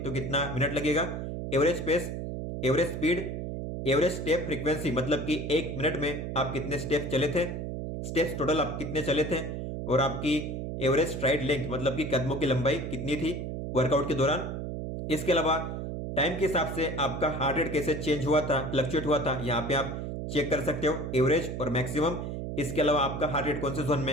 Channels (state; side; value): noise; right; hum, 5 dB below the sound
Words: कितना मिनट लगेगा। Average pace, average speed, average step frequency मतलब कि 1 मिनट में आप कितने स्टेप चले थे, स्टेप्स टोटल आप कितने चले थे, और आपकी एवरेज स्ट्राइड लेंथ मतलब कि कदमों की लंबाई कितनी थी वर्कआउट के दौरान। इसके अलावा टाइम के हिसाब से आपका हार्ट रेट कैसे चेंज हुआ था, फ्लक्चुएट हुआ था, यहाँ पे आप चेक कर सकते हो एवरेज और मैक्सिमम। इसके अलावा आपका हार्ट रेट कौन से जोन